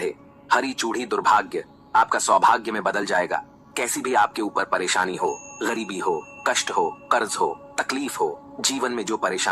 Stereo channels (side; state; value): both; identical; correlation 1.00